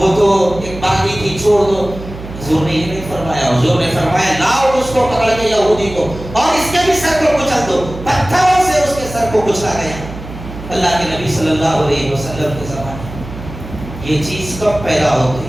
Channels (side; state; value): right; noise; hum, 12 dB below the sound